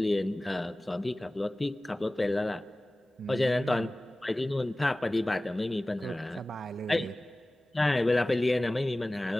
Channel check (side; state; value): both; normal; correlation 0.98